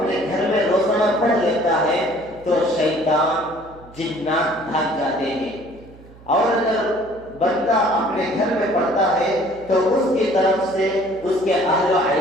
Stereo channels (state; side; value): noise; right; hum, 22 dB below the sound